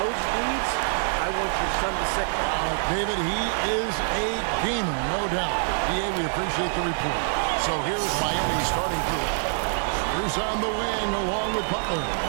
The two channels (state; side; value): silent; left; digital silence